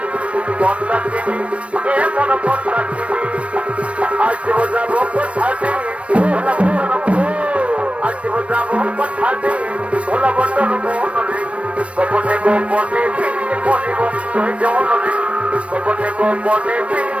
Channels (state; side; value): late; left; 0.062 ms